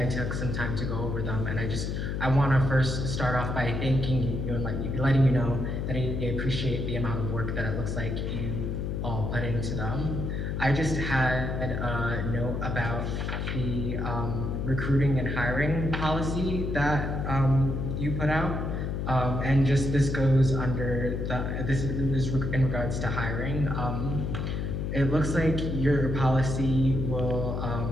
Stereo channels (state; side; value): noise; left; hum, 2 dB below the sound